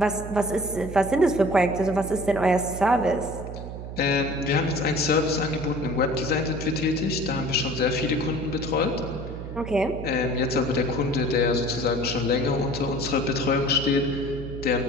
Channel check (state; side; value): noise; right; hum, 9 dB below the sound